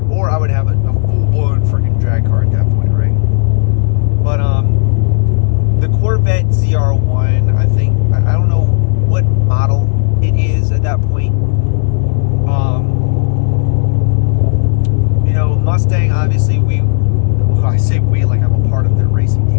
or I would have a full-blown freaking drag car at that point, right? But the Corvette ZR1, I think, I don't know what model it is at that point. You know, Mustang, obviously, I say we like I'm a part of their racing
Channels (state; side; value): silent; right; digital silence